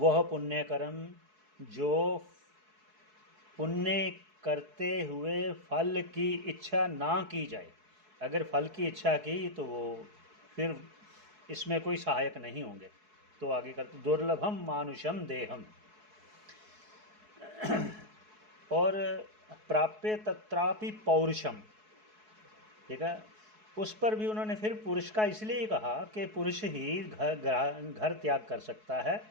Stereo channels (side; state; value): left; late; 4.7 ms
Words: पुण्य कर्म जो पुण्य करते हुए फल की इच्छा ना की जाए, अगर फल की इच्छा की तो वो फिर इसमें कोई सहायक नहीं होंगे। तो आगे करते दुर्लभम मानुषम देहम और प्राप्य तत्रापि पौरुषम। ठीक है, उस पर भी उन्होंने फिर पुरुष का इसलिए कहा कि पुरुष ही घर त्याग कर सकता